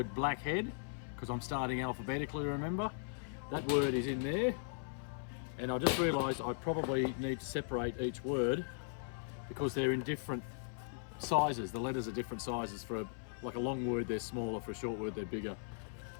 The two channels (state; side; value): silent; right; 52 dB below the other